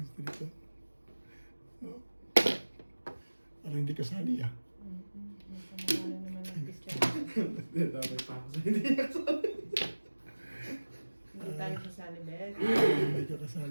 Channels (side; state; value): both; inverted; correlation -1.00